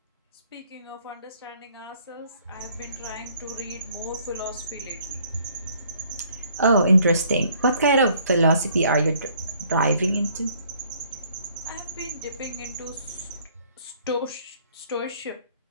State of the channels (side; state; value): both; inverted; correlation -0.62